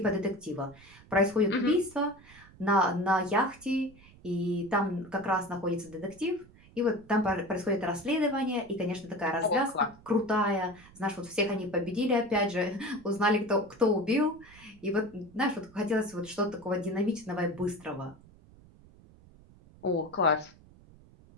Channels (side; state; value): right; noise; rumble, 24 dB below the sound